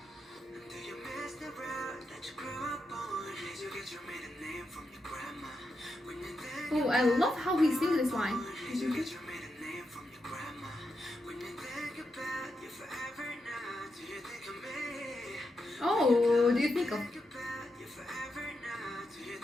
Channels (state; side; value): normal; both; correlation 0.85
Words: Oh, I love how he sings this line. Oh, do you think of...